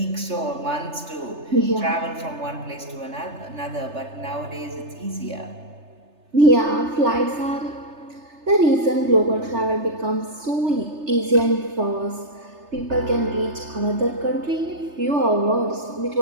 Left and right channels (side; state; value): left; late; 3.3 ms